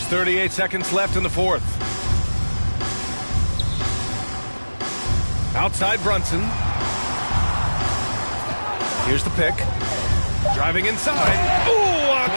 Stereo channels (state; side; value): inverted; both; correlation -1.00